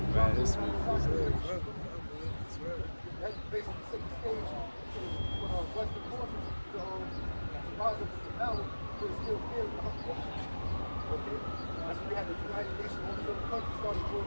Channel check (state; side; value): inverted; both; correlation -1.00